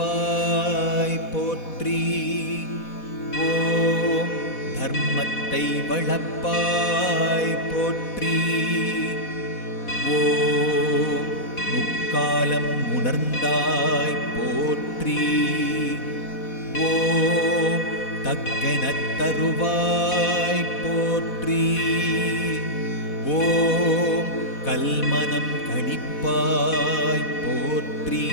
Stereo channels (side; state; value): right; late; 4.1 ms